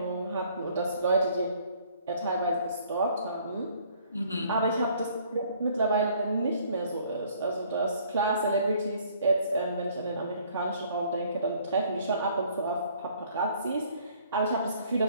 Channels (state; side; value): inverted; both; correlation -0.60